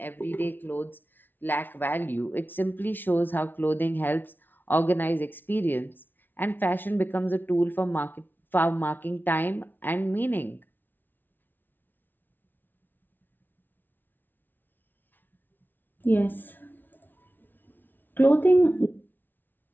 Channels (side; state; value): right; late; 0.091 ms